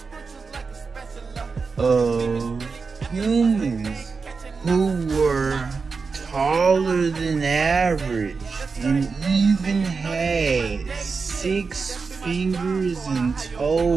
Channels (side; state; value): left; quieter; 4.8 dB